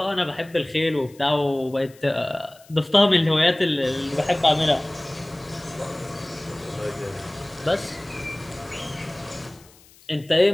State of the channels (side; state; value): left; noise; hiss, 26 dB below the sound